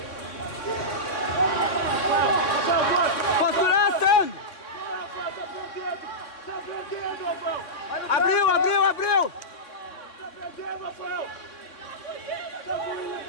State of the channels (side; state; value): right; late; 3.6 ms